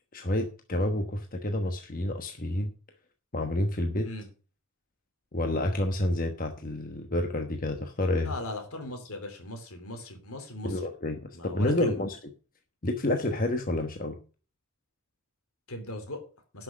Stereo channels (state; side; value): normal; both; correlation 0.50